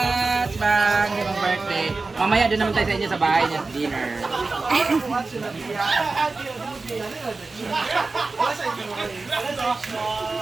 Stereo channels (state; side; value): quieter; left; 3.7 dB